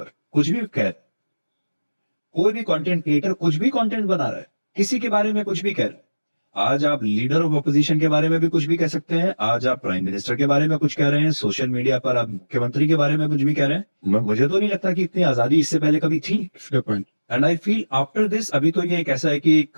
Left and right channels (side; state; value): both; inverted; correlation -1.00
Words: कुछ भी कह, कोई भी कंटेंट क्रिएटर कुछ भी कंटेंट बना रहा है, किसी के बारे में कुछ भी कह रहा है. आज आप लीडर ऑफ ऑपोजिशन के बारे में भी कुछ भी कह सकते हैं, आज आप प्राइम मिनिस्टर के बारे में कुछ कह रहे हैं, सोशल मीडिया पर आप मुख्यमंत्री के बारे में कुछ भी कह रहे हैं. मुझे तो नहीं लगता कि इतनी आजादी इससे पहले कभी थी. And I feel after this, अभी तो ये एक ऐसा है कि